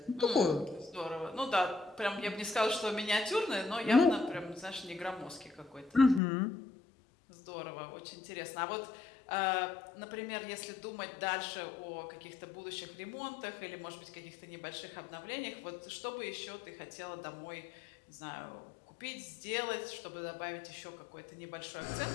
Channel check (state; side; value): drops out; right; at 6.2 s